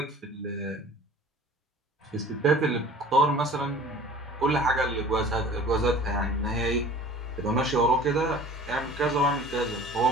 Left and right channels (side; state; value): both; normal; correlation 0.45